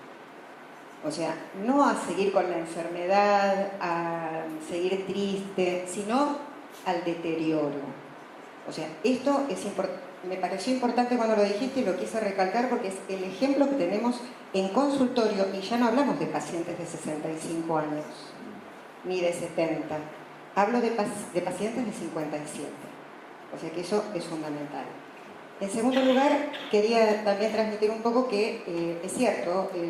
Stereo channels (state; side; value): identical; both; correlation 1.00